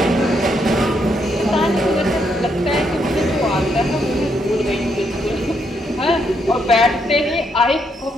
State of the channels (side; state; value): both; normal; correlation 0.76